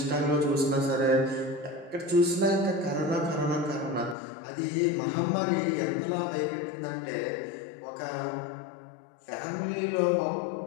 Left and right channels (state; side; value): drops out; right; at 4.2 s